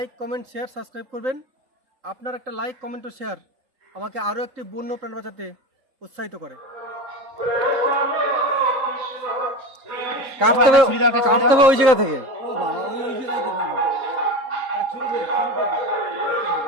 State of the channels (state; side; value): late; left; 3.7 ms